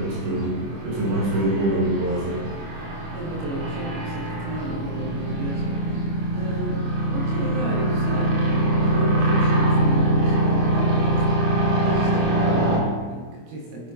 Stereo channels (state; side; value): late; left; 25 ms